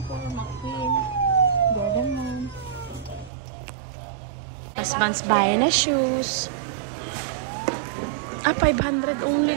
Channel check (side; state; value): left; drops out; at 3.3 s